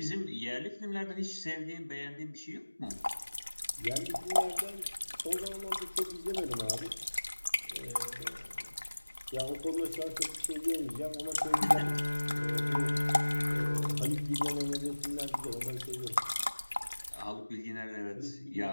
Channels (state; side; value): inverted; both; correlation -1.00